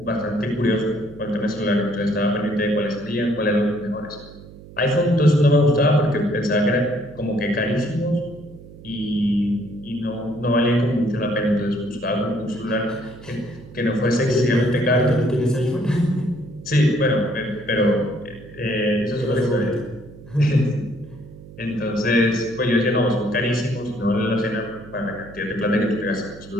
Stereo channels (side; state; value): right; noise; hum, 18 dB below the sound